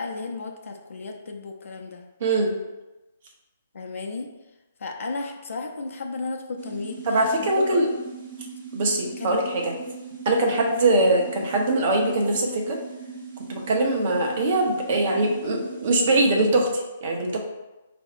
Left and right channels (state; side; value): inverted; both; correlation -0.61